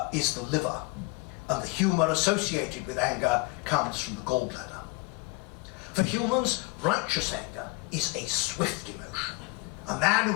liver. and the humour associated with anger comes from the gallbladder. For humans, righteous anger is a swift emotion. A man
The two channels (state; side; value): quieter; right; 25.8 dB